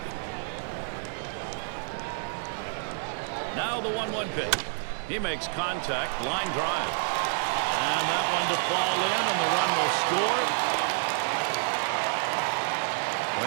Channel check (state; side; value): silent; left; 59 dB below the other